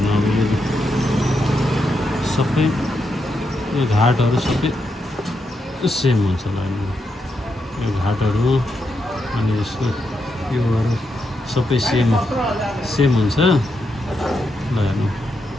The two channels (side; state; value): both; normal; correlation 0.83